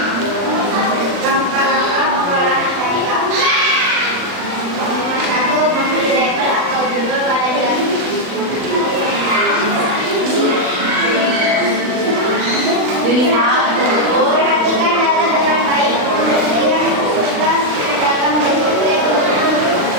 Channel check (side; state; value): left; late; 39 ms